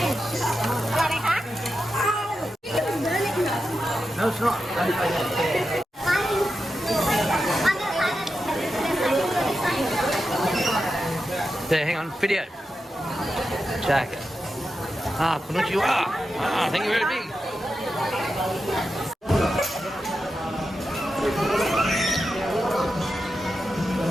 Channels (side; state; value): both; normal; correlation 0.89